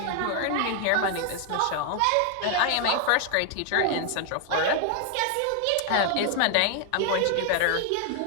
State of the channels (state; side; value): different; both; correlation 0.00